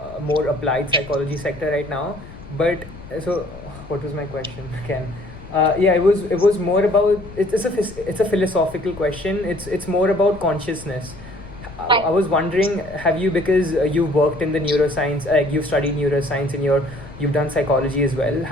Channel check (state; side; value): noise; left; rumble, 16 dB below the sound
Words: more applied psychology sector right now, but so what was my question again? It was more about it's a philosophical question. It's more about consciousness. I was wondering, have you, because you worked in the neuroscience, you've studied neuroscience and you've done psychology as well.